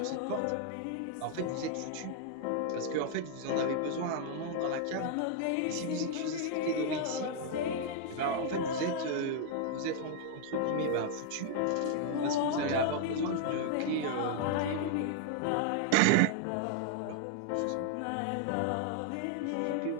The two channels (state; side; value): different; both; correlation 0.00